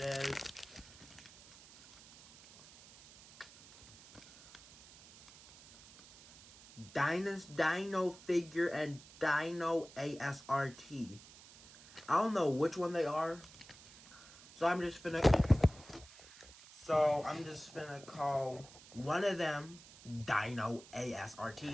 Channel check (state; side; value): noise; right; hiss, 20 dB below the sound